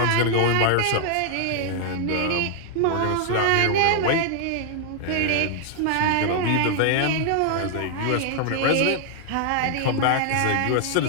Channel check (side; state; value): both; different; correlation 0.00